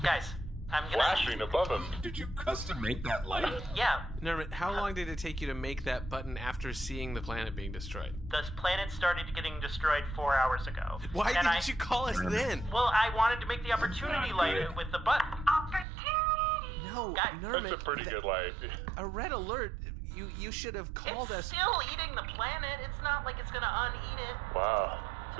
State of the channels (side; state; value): left; drops out; at 15.9 s